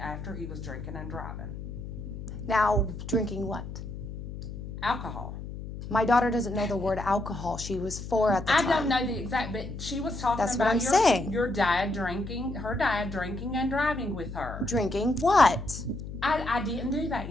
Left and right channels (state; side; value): noise; left; hum, 9 dB below the sound